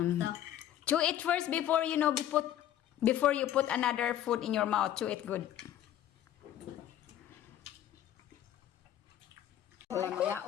Chew it first before before you put another food in your mouth. Chew it good. Mga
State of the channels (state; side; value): quieter; right; 11.5 dB